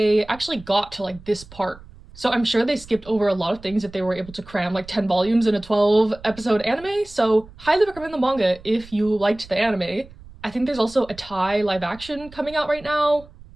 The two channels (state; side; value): noise; right; rumble, 20 dB below the sound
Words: actually got to like this part. So I'm sure they skipped over a lot of things if they were able to cram like 10 volumes in a 12 episode anime. So highly recommend the manga if you liked the anime. I think there's also a Thai live action coming out right now.